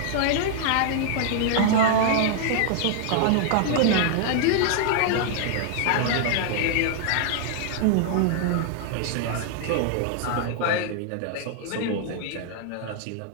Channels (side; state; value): both; different; correlation 0.00